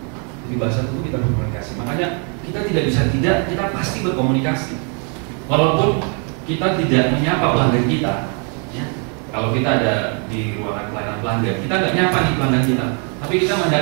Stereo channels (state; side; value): quieter; left; 38.8 dB